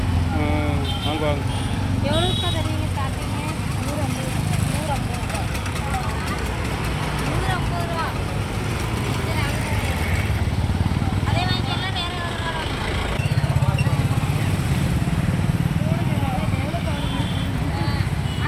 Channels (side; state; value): both; identical; correlation 1.00